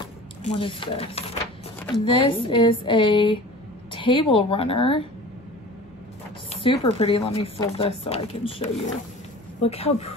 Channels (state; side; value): normal; both; correlation 0.40